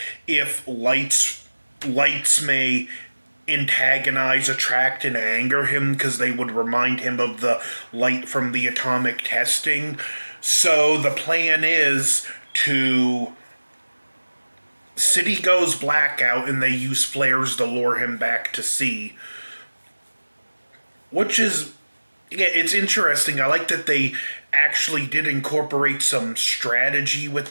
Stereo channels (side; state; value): both; inverted; correlation -1.00